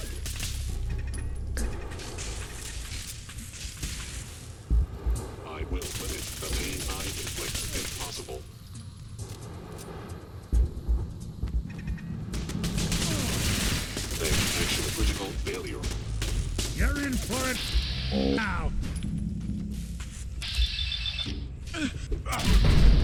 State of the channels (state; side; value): identical; both; correlation 1.00